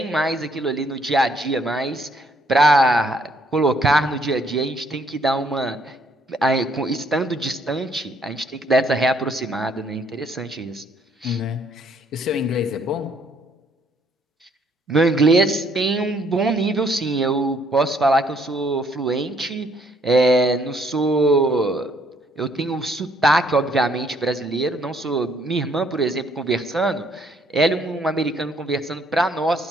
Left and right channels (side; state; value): both; normal; correlation 0.66